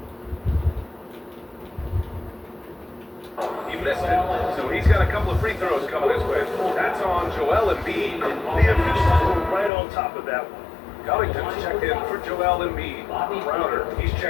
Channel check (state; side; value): drops out; right; at 9.7 s